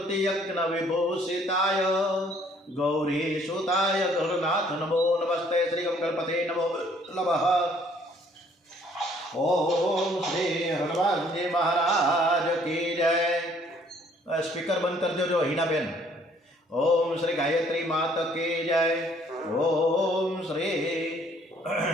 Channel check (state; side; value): normal; both; correlation 0.61